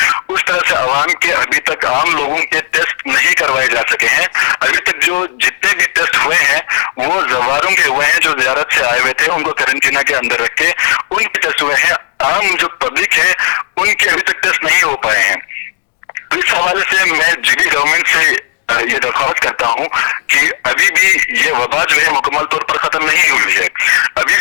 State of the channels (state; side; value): silent; right; 72 dB below the other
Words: اس طرح سے عوام کے ابھی تک عام لوگوں کے ٹیسٹ نہیں کروائے جا سکے ہیں. ابھی تک جو جتنے بھی ٹیسٹ ہوئے ہیں وہ زواروں کے ہوئے ہیں، جو زیارت سے آئے ہوئے تھے ان کو قرنطینہ کے اندر رکھ کے ان کے ٹیسٹ ہوئے ہیں. عام جو پبلک ہے ان کے ابھی تک ٹیسٹ نہیں ہو پائے ہیں. اس حوالے سے میں جی بی گورنمنٹ سے یہ درخواست کرتا ہوں کہ ابھی بھی یہ وبا جو ہے مکمل طور پر ختم نہیں ہوئی ہے. ابھی